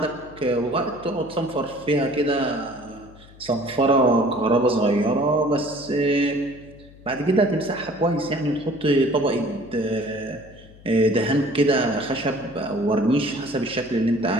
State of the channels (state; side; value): noise; left; hum, 22 dB below the sound